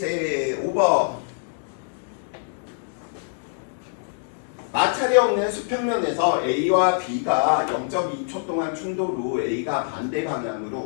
5번. 마찰이 없는 수평면에서 A와 B가 0.2초 동안 충돌 후 A가 반대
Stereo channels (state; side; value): silent; right; digital silence